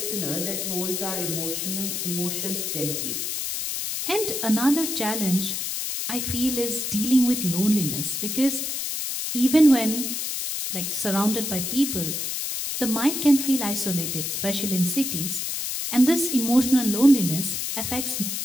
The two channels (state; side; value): noise; left; hiss, 3 dB below the sound